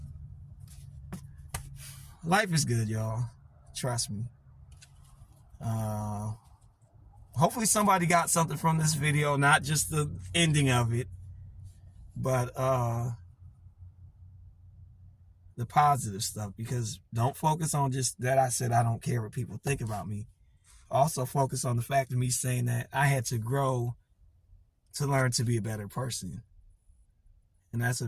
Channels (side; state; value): both; identical; correlation 1.00